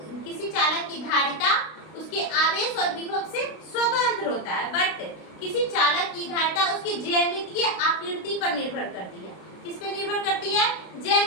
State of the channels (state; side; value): late; right; 32 ms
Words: किसी चालक की धारिता उसके आवेश और विभव से स्वतंत्र होता है, बट किसी चालक की धारिता उसकी ज्यामितीय आकृति पर निर्भर करती है। किस पे निर्भर करती है?